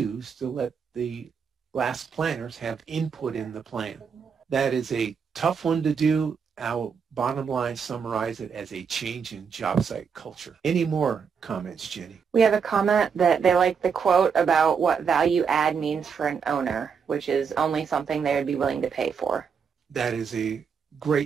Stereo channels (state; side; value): quieter; left; 6.4 dB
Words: to let the Last Planners have input in the plan. That is a tough one to do. I'll bottom line summarize it as a change in job site culture. Any more comments, Jenny? We have a comment that they like the quote about what value add means for an owner, which is only something they would be willing to pay for. That is a